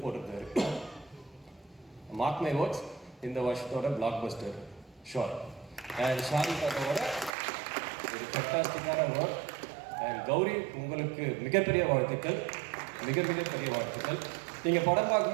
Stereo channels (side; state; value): left; drops out; at 7.3 s